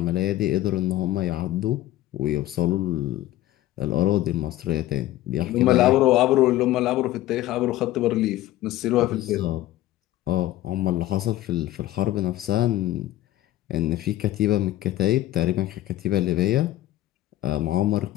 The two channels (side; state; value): right; quieter; 14.9 dB